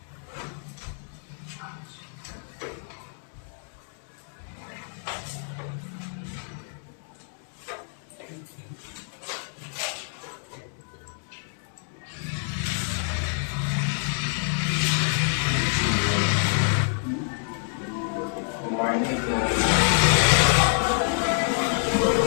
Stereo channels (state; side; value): silent; right; 60 dB below the other